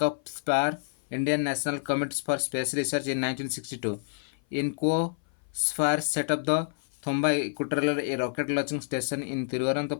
Indian National Committee for Space Research, in 1962. INCOSPAR set up the Thumba Equatorial Rocket Launching Station in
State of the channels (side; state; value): right; silent; 56 dB below the other